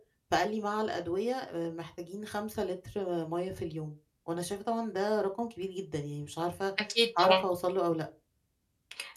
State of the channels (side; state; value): both; identical; correlation 1.00